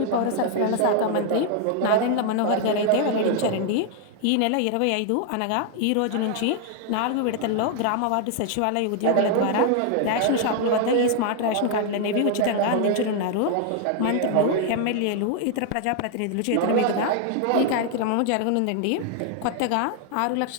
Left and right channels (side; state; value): both; different; correlation 0.00